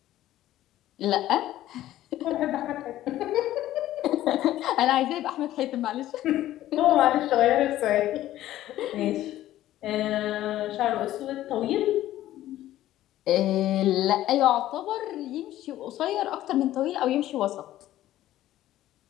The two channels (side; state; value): right; quieter; 14.0 dB